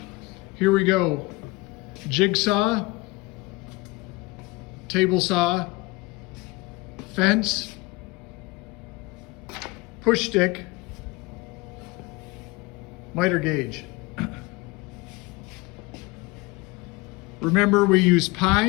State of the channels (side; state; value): right; quieter; 23.1 dB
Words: Here we go. Jigsaw, table saw, fence, push stick, miter gauge. Remember, we use